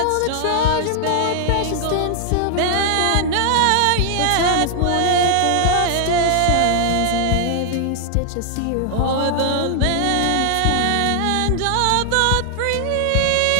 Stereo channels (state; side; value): different; both; correlation 0.00